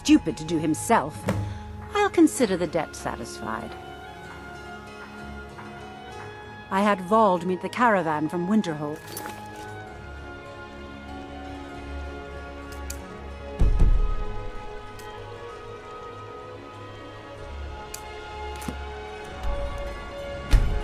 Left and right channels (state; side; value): identical; both; correlation 1.00